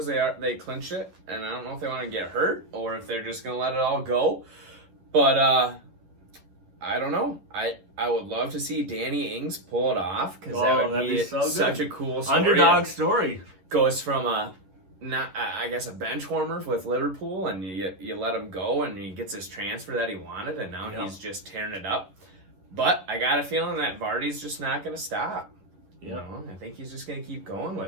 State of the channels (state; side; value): late; left; 10 ms